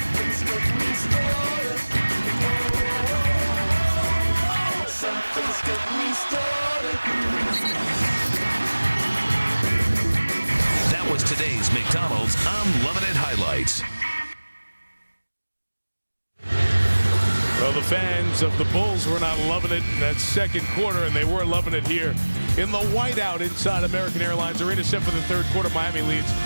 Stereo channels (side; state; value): both; inverted; correlation -1.00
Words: That was today's McDonald's I'm Loving It highlights. Well, the fans of the Bulls were not loving it in that second quarter, and they were loving it here in the whiteout inside American Airlines Arena. Set for the third quarter, Miami leads